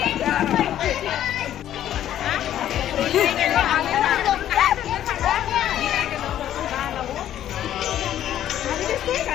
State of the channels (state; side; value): quieter; right; 11.5 dB